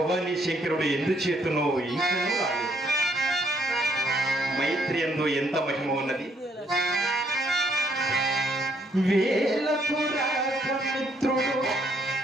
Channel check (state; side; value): normal; both; correlation 0.69